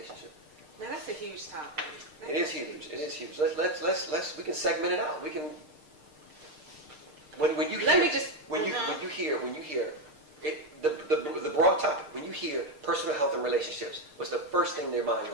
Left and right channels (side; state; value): left; late; 6.6 ms